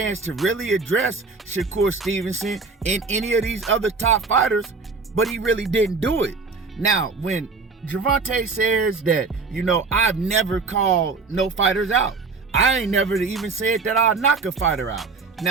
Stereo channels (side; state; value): left; quieter; 4.3 dB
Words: to really address Shakur Stevenson and any of these other top fighters, but he really didn't do it. Now, when Gervonta says that, you know, I've never called no fighters out. I ain't never even said that I'll knock a fighter out.